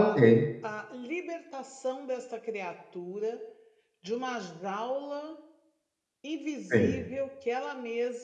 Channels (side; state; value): both; identical; correlation 1.00